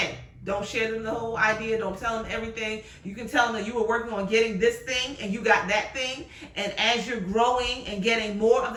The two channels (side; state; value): both; identical; correlation 1.00